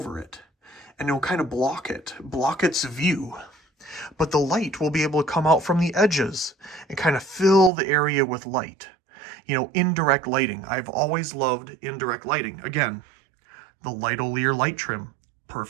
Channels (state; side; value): drops out; left; at 7.7 s